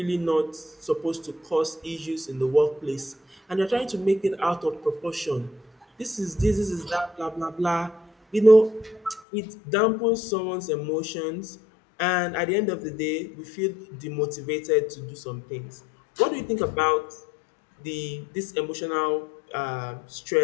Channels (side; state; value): right; drops out; at 9.2 s